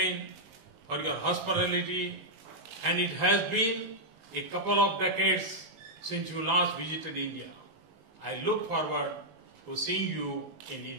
for your hospitality, and it has been a couple of decades since you last visited India. I look forward to seeing you in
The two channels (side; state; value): left; late; 19 ms